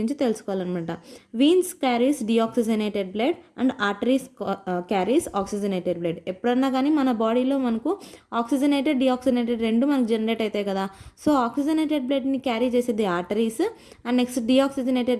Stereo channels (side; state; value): both; identical; correlation 1.00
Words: తెలుసుకోవాలన్నమాట. Veins carries deoxygenated blood and arteries carries oxygenated blood. ఎప్పుడన్నా కానీ మన బాడీలో మనకు ఆక్సిజనేటెడ్ డిఆక్సిజనేటెడ్ రెండు మనకు జనరేట్ అవుతాయి కదా. సో ఆక్సిజనేటెడ్ బ్లడ్ని క్యారీ చేసేది ఆర్టరీస్ అండ్ నెక్స్ట్